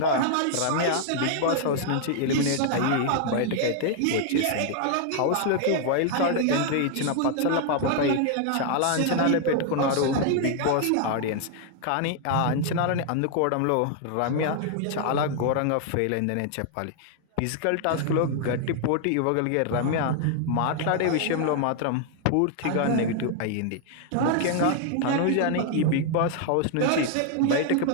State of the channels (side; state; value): both; different; correlation 0.00